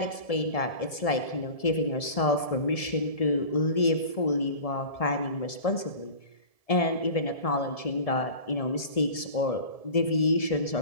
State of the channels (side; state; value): right; late; 1.7 ms